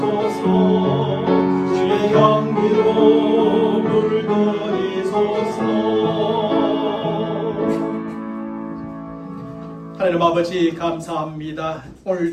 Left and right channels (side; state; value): both; identical; correlation 1.00